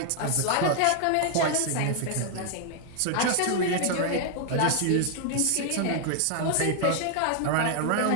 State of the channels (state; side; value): different; both; correlation 0.00